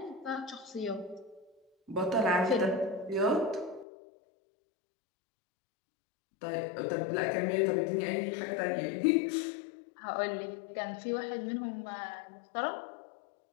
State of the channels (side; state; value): right; drops out; at 3.9 s